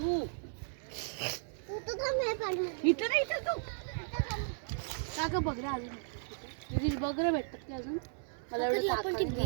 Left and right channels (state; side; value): silent; left; 54 dB below the other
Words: तू तर थांब हे पाणी. इथं नाही इथं तू. काका बघरा अजून. तुझी बघरा भेटतात की अजून? मला एवढं आपण ती